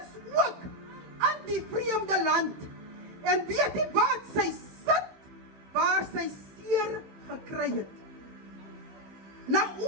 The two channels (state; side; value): late; left; 16 ms